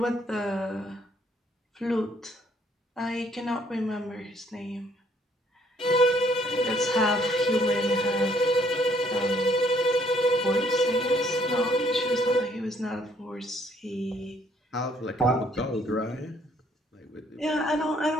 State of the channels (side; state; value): both; normal; correlation 0.65